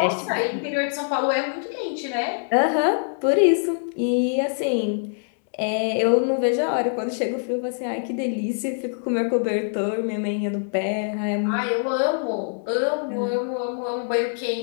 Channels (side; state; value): right; silent; digital silence